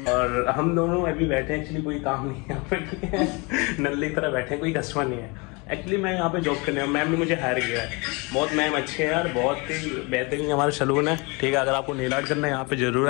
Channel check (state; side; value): quieter; right; 28.5 dB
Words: और हम दोनों अभी बैठे हैं, एक्चुअली कोई काम नहीं है यहाँ पे। नल्ले की तरह बैठे हैं, कोई कस्टमर नहीं है। एक्चुअली मैं यहाँ पे जॉब करने हूँ, मैम ने मुझे हायर किया है। बहुत मैम अच्छे हैं यार, बहुत ही बेहतरीन हमारा सैलून है। ठीक है, अगर आपको नेल आर्ट करना है यहाँ पे जरूर